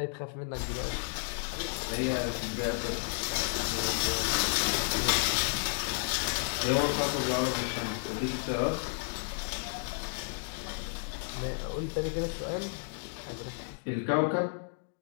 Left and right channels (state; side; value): silent; right; digital silence